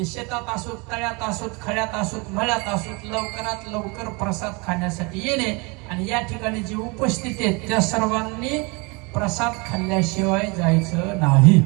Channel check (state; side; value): quieter; left; 28.8 dB